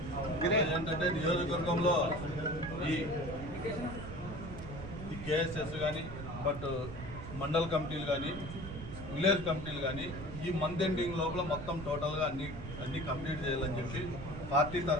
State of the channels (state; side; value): noise; right; rumble, 9 dB below the sound